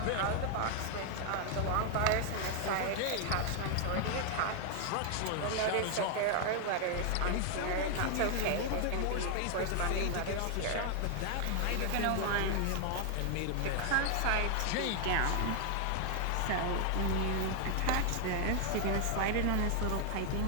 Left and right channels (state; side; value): different; both; correlation 0.00